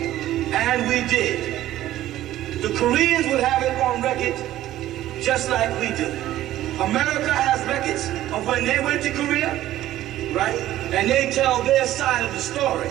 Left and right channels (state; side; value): quieter; left; 13.9 dB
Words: and we did, the Koreans would have it on record just like we do. America has records of when they went to Korea, right? And they tell their side of the story.